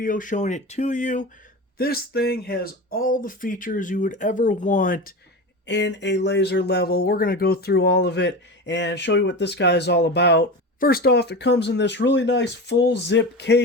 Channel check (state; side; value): normal; both; correlation 0.26